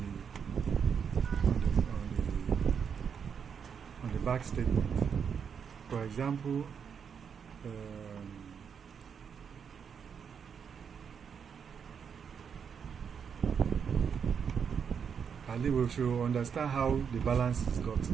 the back statement. For example, I think we should understand how the balance is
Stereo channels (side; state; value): left; quieter; 7.0 dB